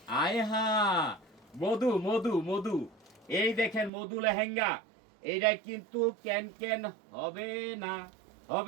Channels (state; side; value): drops out; left; at 3.9 s